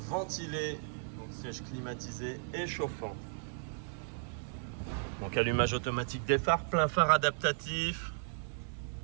donc siège climatisé et chauffant. Donc allumage automatique des phares, plein phare adaptatif.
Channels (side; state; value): left; silent; 54 dB below the other